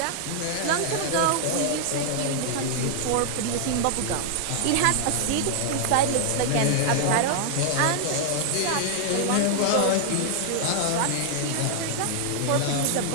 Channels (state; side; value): different; both; correlation 0.00